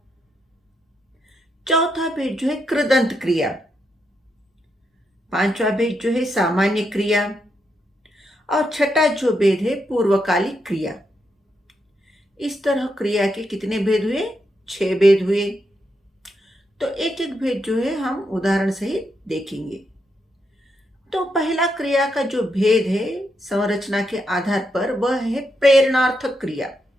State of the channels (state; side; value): normal; both; correlation 0.82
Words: चौथा भेद जो है कृदंत क्रिया। पांचवा भेद जो है सामान्य क्रिया। और छठा जो भेद है पूर्वकालिक क्रिया। इस तरह क्रिया के कितने भेद हुए? 6 भेद हुए। तो एक एक भेद जो है हम उदाहरण सहित देखेंगे। तो पहला क्रिया का जो भेद है संरचना के आधार पर, वह है प्रेरणार्थक क्रिया।